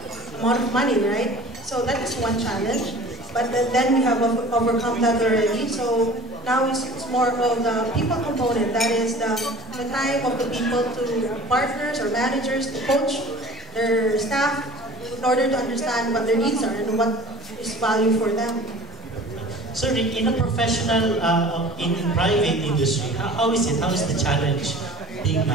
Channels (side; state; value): both; normal; correlation 0.44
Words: amount of money, right? So that is one challenge, but then we have overcome that already. So now it's more of the people component, that is the time of the people to partners or managers to coach their staff in order to understand what their needs are and what is value for them. So in a professional, in private industry, how is it? How is the challenge being